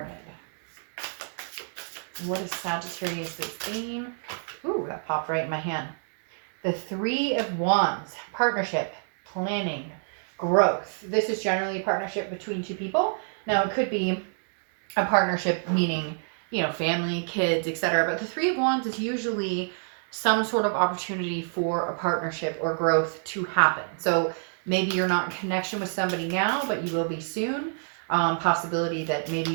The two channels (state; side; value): silent; left; digital silence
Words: What is Sagittarius' theme? Ooh, that popped right in my hand. The Three of Wands. Partnership, planning, growth. This is generally a partnership between two people. Now, it could be a partnership meaning, you know, family, kids, etc. But the Three of Wands is usually some sort of opportunity for a partnership or growth to happen. So maybe you're not in connection with somebody now, but you will be soon. Possibility that maybe